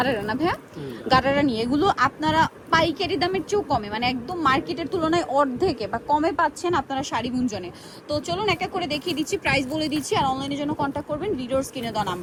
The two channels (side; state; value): both; identical; correlation 1.00